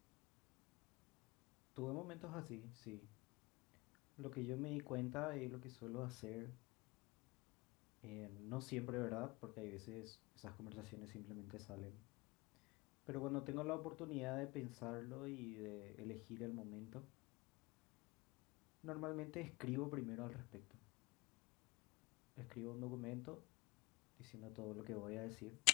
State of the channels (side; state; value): right; quieter; 24.3 dB